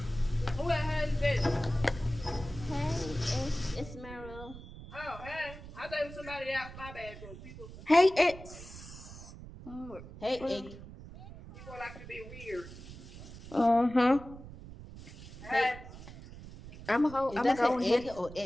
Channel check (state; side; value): noise; right; rumble, 15 dB below the sound